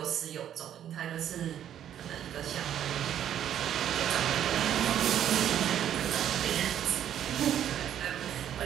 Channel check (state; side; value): quieter; left; 10.3 dB